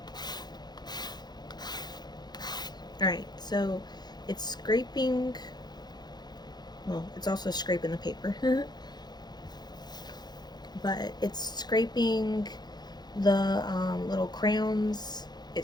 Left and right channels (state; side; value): late; right; 0.20 ms